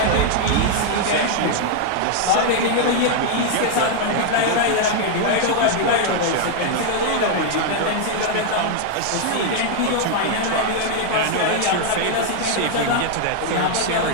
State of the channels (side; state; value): both; different; correlation 0.00